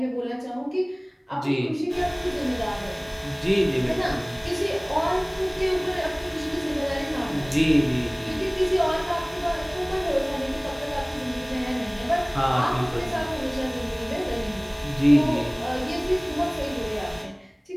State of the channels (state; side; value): identical; both; correlation 1.00